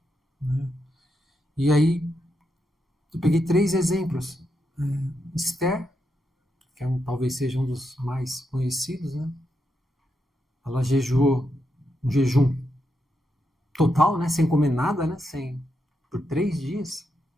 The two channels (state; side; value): normal; both; correlation 0.84